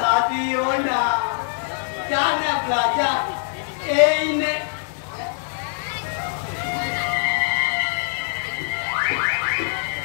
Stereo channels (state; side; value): silent; right; 63 dB below the other